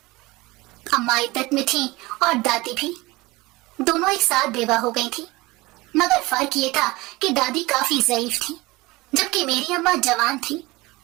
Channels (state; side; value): quieter; left; 21.5 dB